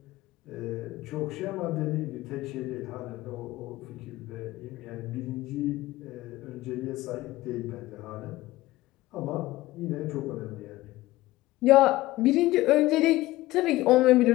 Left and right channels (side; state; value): right; quieter; 17.8 dB